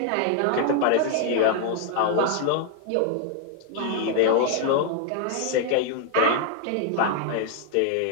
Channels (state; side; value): different; both; correlation 0.00